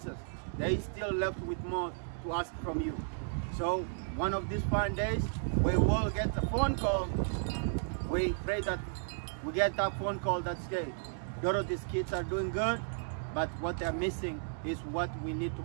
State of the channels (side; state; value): left; silent; digital silence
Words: They still left with more to ask from you. So one of these fine days, we will get a phone call. We pray that we get that phone call that says, Dorothy's kids are doing good, but what they're missing is what we need to